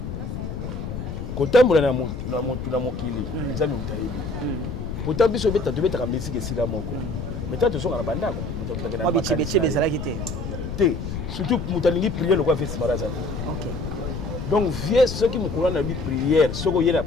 Kotambola na mutu na mokili nzambe mutayebi. Pourtant biso beta tobeta musique esika moko. Meta to songa na bandako mutu na makanisi. Te surtout mutalingi prière le quoi fait Simaraza. OK. Donc vieux ceux qui me connaissent na bi prière, ceux qui y na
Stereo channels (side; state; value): left; noise; rumble, 6 dB below the sound